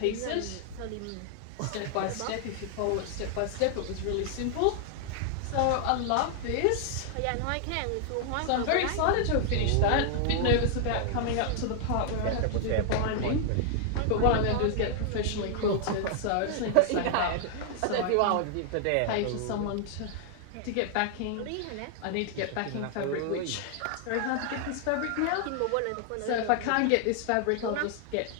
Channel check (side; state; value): both; different; correlation 0.00